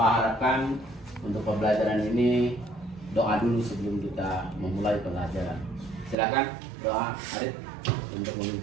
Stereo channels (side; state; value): left; drops out; at 6.2 s